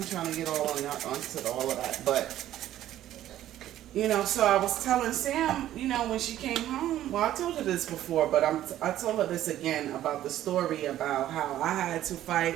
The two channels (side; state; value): left; quieter; 12.8 dB